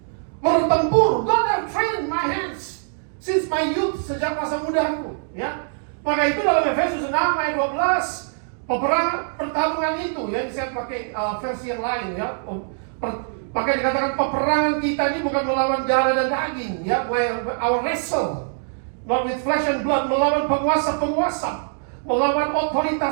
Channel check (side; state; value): left; silent; digital silence